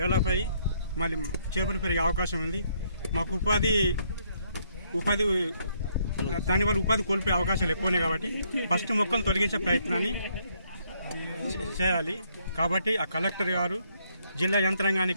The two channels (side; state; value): both; inverted; correlation -0.71